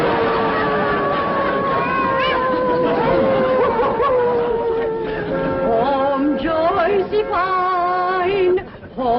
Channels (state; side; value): identical; both; correlation 1.00